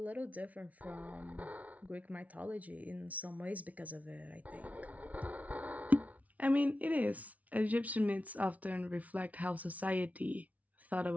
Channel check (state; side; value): late; left; 0.070 ms